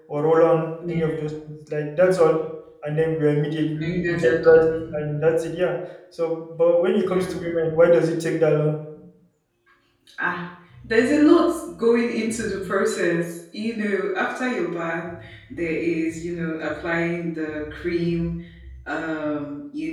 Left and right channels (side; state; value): both; identical; correlation 1.00